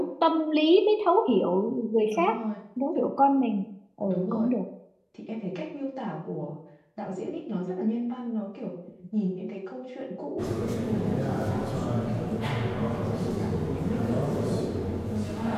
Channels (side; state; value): both; identical; correlation 1.00